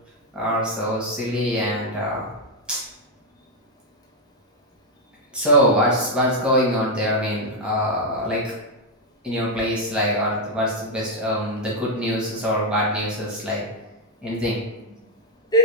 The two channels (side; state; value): both; normal; correlation 0.01